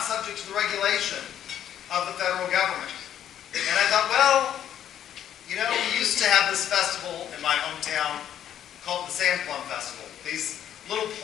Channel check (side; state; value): right; quieter; 10.4 dB